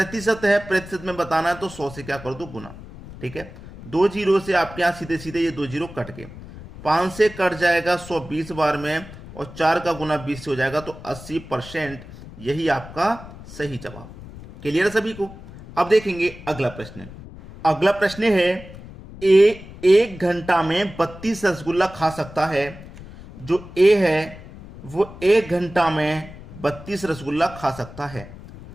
है? प्रतिशत में बताना है तो 100 से क्या कर दो? गुना। ठीक है, 2 जीरो से आपके यहां सीधे सीधे ये 2 जीरो कट के 5 से कट जाएगा 120 बार में, और 4 का गुना 20 से हो जाएगा, तो 80%। यही आपका सही जवाब। क्लियर सभी को? अब देखेंगे अगला प्रश्न। अगला प्रश्न है, ए 1 घंटा में 32 रसगुल्ला खा सकता है। जो ए है वो 1 घंटा में 32 रसगुल्ला खा सकता है,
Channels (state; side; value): noise; left; rumble, 16 dB below the sound